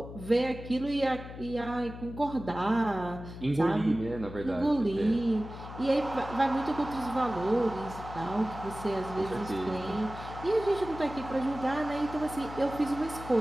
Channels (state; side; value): noise; left; hum, 12 dB below the sound